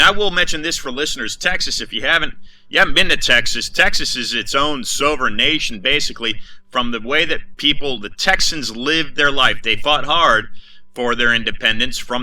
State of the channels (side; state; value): both; identical; correlation 1.00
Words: I will mention this for listeners. Texas, if you haven't been to Texas, Texas is its own sovereign nation, basically, from the way that the Texans lived their life. They fought hard for their independence